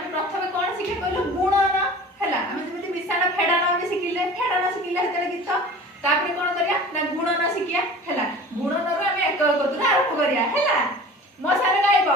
प्रथमे कोन शिखे कहलो गुणन हैला आमे जेमति विशाल फेडान आमे शिखिले हेतले गीत तापरे कोन करिया ना गुणन शिखिया हैला गुणन रो आमे एक कतुरा आरंभ करिया हैला मो सारे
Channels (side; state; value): both; normal; correlation 0.40